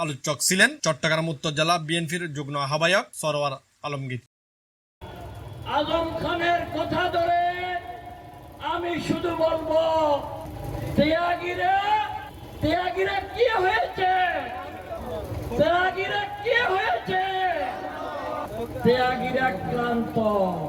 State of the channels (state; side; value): identical; both; correlation 1.00